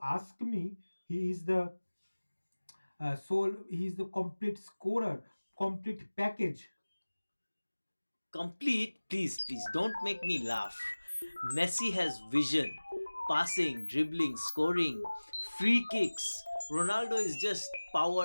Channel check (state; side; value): inverted; both; correlation -1.00